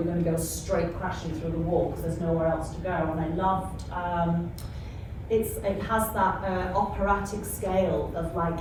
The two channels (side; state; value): both; identical; correlation 1.00